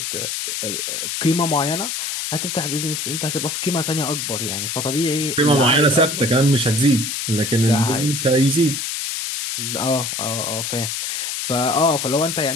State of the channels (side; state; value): left; noise; hiss, 3 dB below the sound